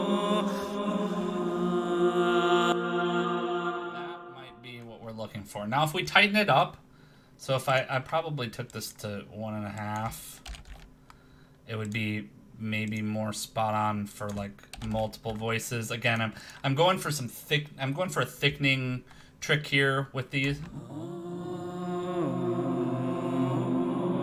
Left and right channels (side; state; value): both; identical; correlation 1.00